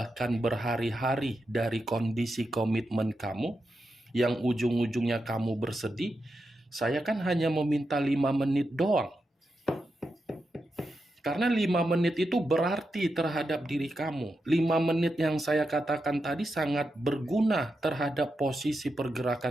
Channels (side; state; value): both; normal; correlation 0.87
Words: berhari-hari dari kondisi komitmen kamu, yang ujung-ujungnya kamu bersedih, saya kan hanya meminta 5 menit doang. Karena 5 menit itu berarti terhadap diri kamu. 5 menit yang saya katakan tadi sangat berguna terhadap posisi